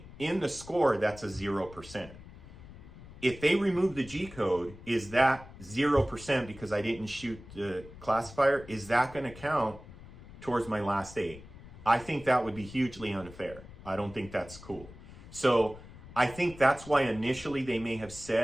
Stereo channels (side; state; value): left; noise; rumble, 17 dB below the sound